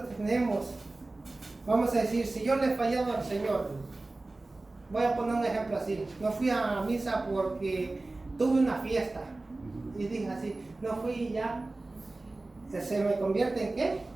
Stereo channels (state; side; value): quieter; left; 3.1 dB